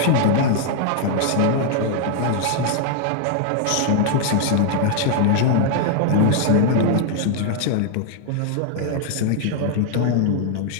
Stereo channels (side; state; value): both; different; correlation 0.00